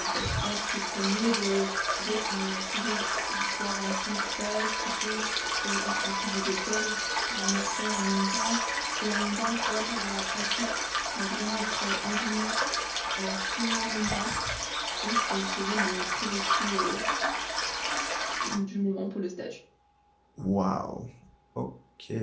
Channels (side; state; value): both; identical; correlation 1.00